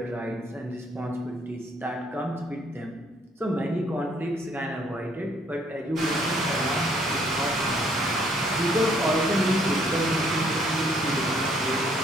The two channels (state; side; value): normal; both; correlation 0.65